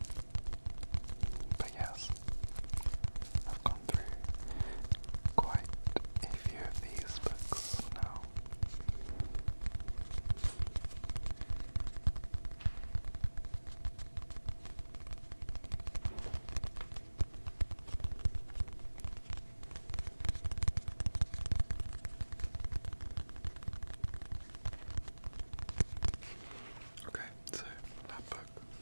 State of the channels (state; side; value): inverted; both; correlation -1.00